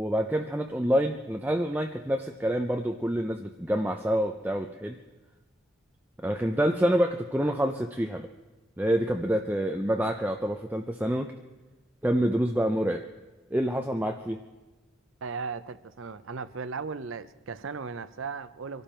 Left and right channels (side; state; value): both; normal; correlation 0.82